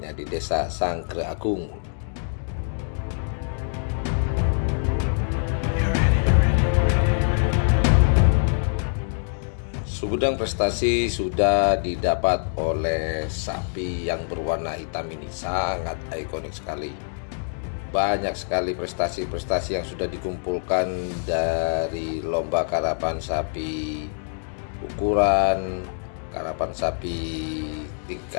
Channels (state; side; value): silent; right; digital silence